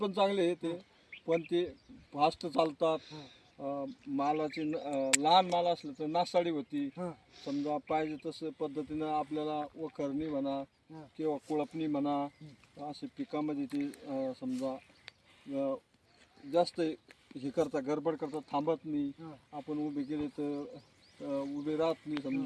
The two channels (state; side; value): identical; both; correlation 1.00